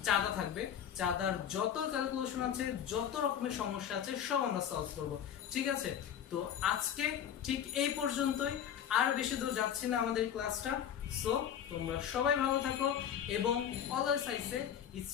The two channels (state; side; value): quieter; right; 9.3 dB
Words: চাঁদা থাকবে, চাঁদার যত ক্যালকুলেশন আছে, যত রকমের সমস্যা আছে সব আমরা সলভ করব, ঠিক আছে। তো আজকে ঠিক এই পর্যন্তই, আর বেশি দূর যাচ্ছি না আমাদের ক্লাসটা। সো তোমরা সবাই ভালো থাকো এবং always I say